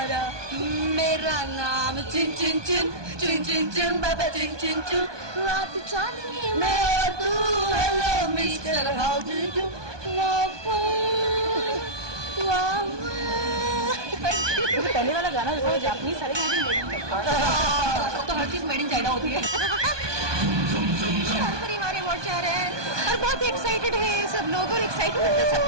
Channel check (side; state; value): left; late; 1.2 ms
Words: मेरा नाम चिन चिन चिन चिन चिन चिन बाबा चिन चिन चिन, रात चांदनी मैं और तू, hello mister how do you, पहले वाला गाना जो जापानीज सारे तो हर चीज मेड इन चाइना होती है। हमारे वोट जा रहे हैं और बहुत एक्साइटेड है सब लोग, और एक्साइटमेंट तो